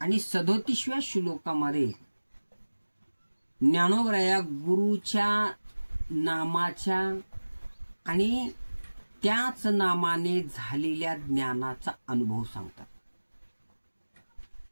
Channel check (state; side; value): inverted; both; correlation -1.00